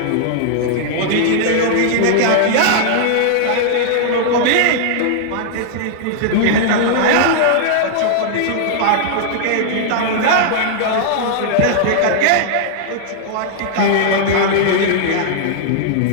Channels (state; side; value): different; both; correlation -0.01